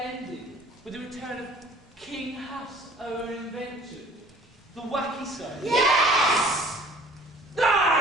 ending with the return of King Huff's own invention, the Wacky Soap? Yes!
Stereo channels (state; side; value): normal; both; correlation 0.51